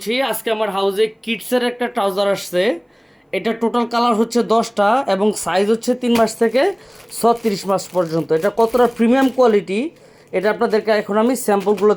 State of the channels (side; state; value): both; identical; correlation 1.00